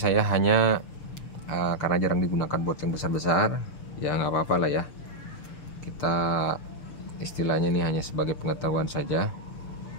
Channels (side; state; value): right; late; 6.7 ms